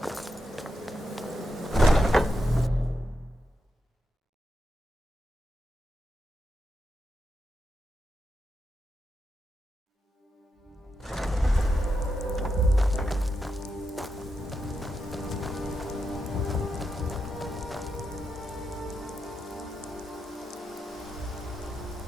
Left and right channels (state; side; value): normal; both; correlation 0.85